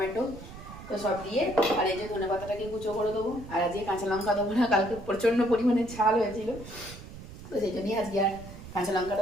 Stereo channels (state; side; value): noise; right; rumble, 14 dB below the sound